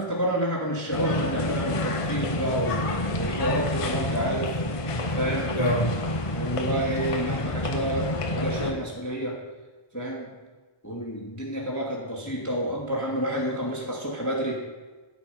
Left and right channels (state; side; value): late; right; 1.5 ms